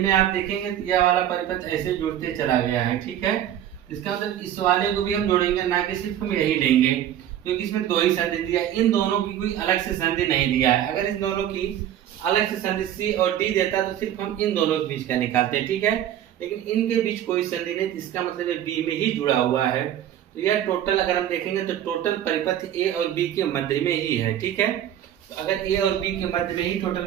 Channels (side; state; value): left; quieter; 11.1 dB